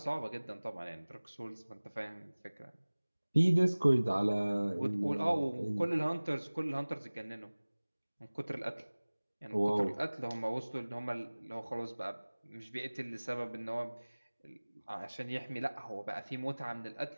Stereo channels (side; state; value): both; inverted; correlation -1.00